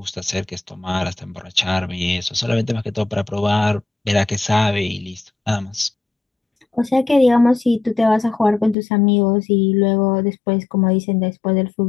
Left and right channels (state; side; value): drops out; right; at 8.8 s